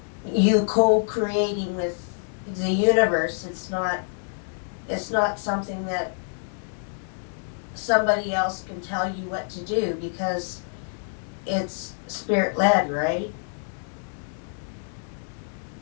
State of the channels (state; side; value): silent; right; digital silence